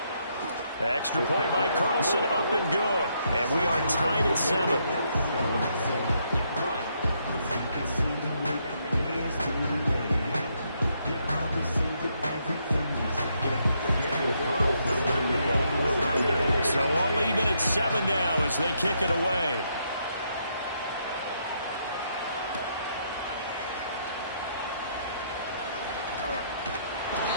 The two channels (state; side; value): inverted; both; correlation -0.75